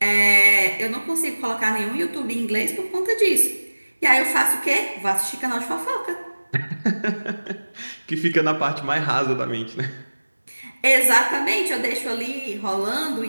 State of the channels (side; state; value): both; inverted; correlation -1.00